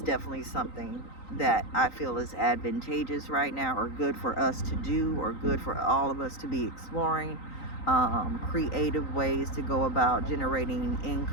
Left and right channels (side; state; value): right; late; 3.9 ms